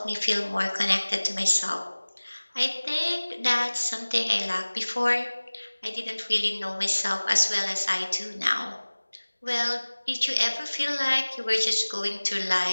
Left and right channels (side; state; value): both; inverted; correlation -1.00